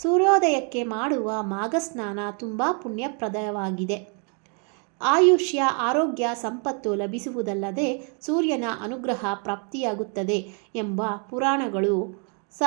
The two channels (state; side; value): quieter; left; 39.1 dB